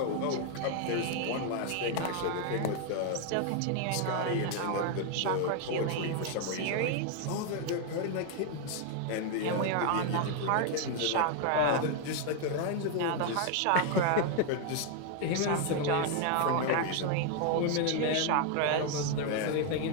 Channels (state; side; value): different; both; correlation 0.00